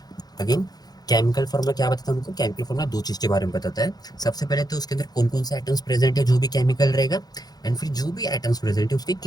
अगेन, केमिकल फॉर्मूला क्या बताता है हमको? केमिकल फॉर्मूला दो चीज के बारे में बताता है। सबसे पहले तो उसके अंदर कौन कौन से एटम्स प्रेजेंट है जो भी केमिकल रहेगा, एंड फिर जो भी एटम्स प्रेजेंट है उसके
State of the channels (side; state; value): right; late; 0.19 ms